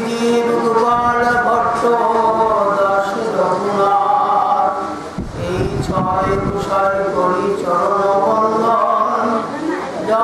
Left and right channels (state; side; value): identical; both; correlation 1.00